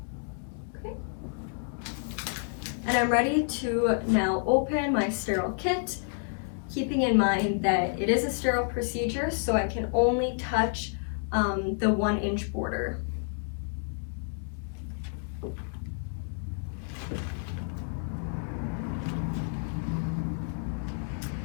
Okay. And I'm ready to now open my sterile kit, keeping in mind that it is a sterile procedure, so I can only touch the 1-inch border.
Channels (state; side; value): silent; right; 58 dB below the other